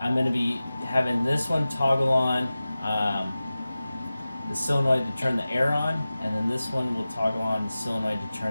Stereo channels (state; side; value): inverted; both; correlation -0.96